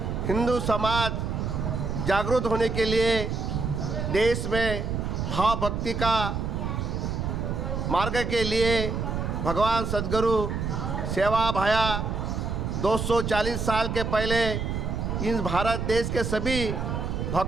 हिंदू समाज जागरूक होने के लिए देश में भाव भक्ति का मार्ग के लिए भगवान सद्गुरु सेवा भाया 240 साल के पहले इस भारत देश के सभी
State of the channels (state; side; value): noise; right; rumble, 2 dB below the sound